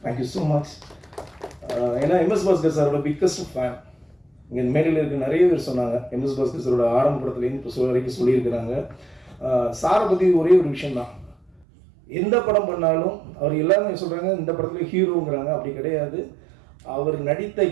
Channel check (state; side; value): drops out; left; at 11.7 s